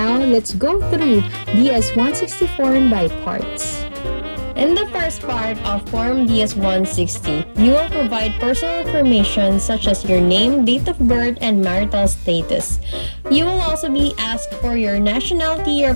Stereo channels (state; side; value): inverted; both; correlation -1.00